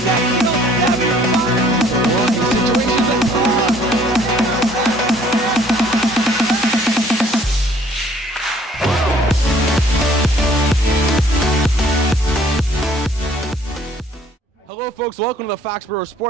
Hello folks, welcome to the Foxborough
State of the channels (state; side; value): normal; both; correlation 0.58